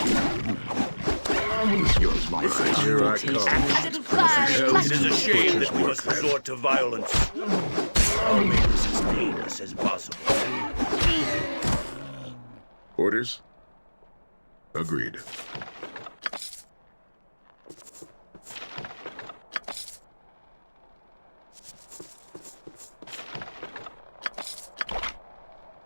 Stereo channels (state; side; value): inverted; both; correlation -1.00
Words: Yours, my friend. Here I come. A little fire. It is a shame that we must resort to violence. I'll make this as painless as possible. Orders? Agreed.